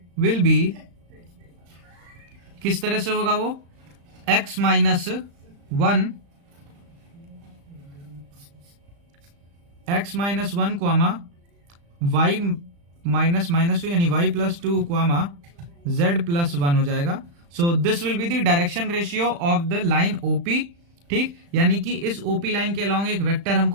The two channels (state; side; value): late; left; 35 ms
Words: will be, किस तरह से होगा वो, x - 1 x - 1 y -2 यानी y +2 z +1 हो जाएगा। So this will be the direction ratio of the line OP। ठीक, यानी कि इस OP लाइन के अलोंग एक वेक्टर